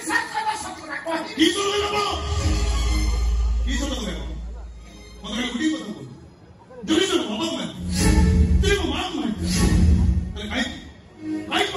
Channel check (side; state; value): both; identical; correlation 1.00